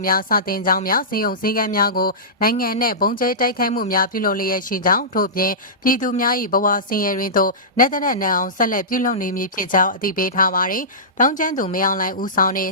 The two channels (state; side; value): normal; both; correlation -0.19